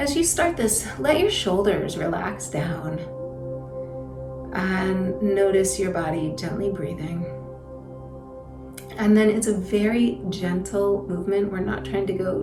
you start this, let your shoulders relax down and notice your body gently breathing. And then it's a very gentle movement. We're not trying to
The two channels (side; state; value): both; identical; correlation 1.00